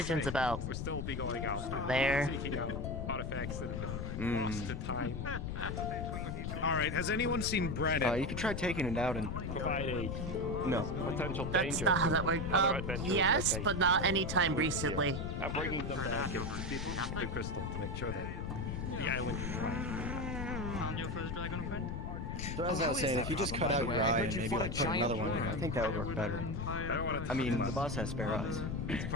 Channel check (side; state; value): left; noise; rumble, 4 dB below the sound